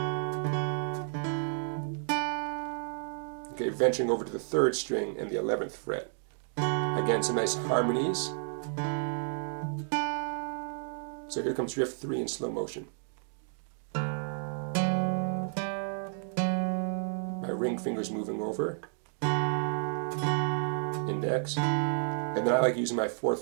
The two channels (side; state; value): left; silent; digital silence